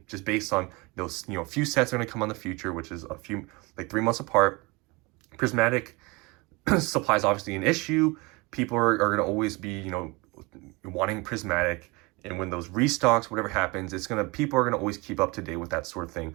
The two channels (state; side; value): quieter; left; 25.8 dB